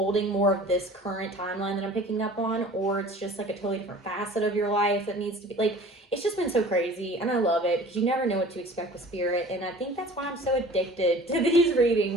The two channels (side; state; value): both; normal; correlation 0.45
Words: more of this current timeline that I'm picking up on, or it's just like a totally different facet of your life that needs to be, like, it's just been so crazy, and I love it because you never know what to expect with spirit. And I think that's why I'm so addicted to these